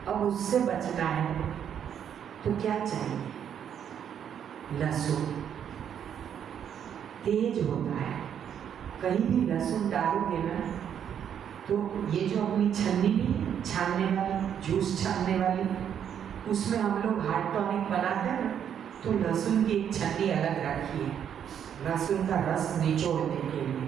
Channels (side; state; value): left; quieter; 8.8 dB